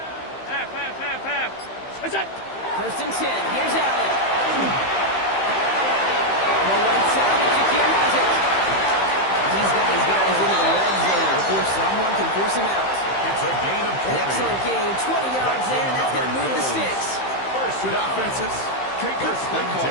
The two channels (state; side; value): late; right; 15 ms